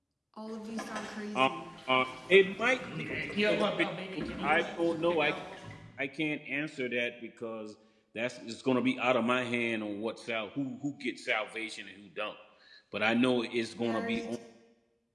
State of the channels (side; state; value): both; identical; correlation 1.00